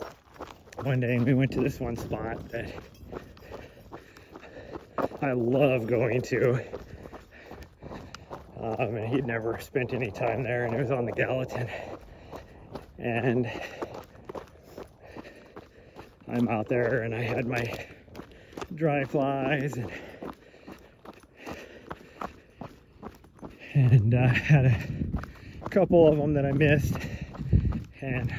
one day, and we went to this one spot that I love going to. And he'd never spent any time there, and it was on the Gallatin. And I'm out there, and I had my dry flies, and I had a couple of them that I missed. And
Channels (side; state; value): both; identical; correlation 1.00